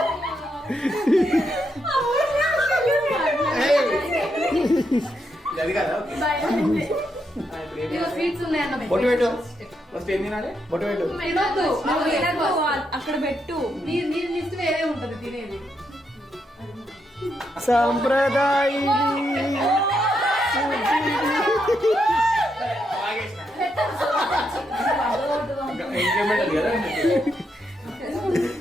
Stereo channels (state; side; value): normal; both; correlation 0.80